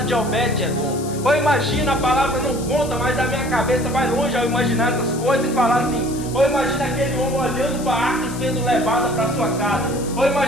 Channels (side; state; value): left; noise; hiss, 14 dB below the sound